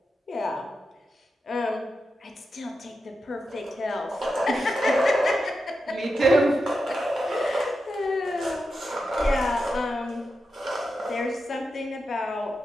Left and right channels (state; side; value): normal; both; correlation 0.89